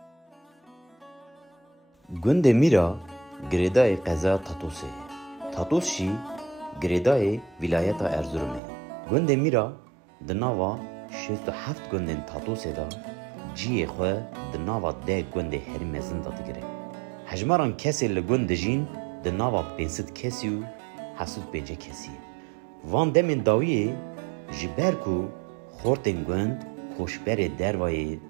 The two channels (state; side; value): drops out; left; at 8.6 s